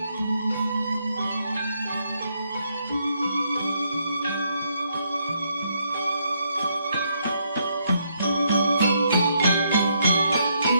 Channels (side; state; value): both; inverted; correlation -0.75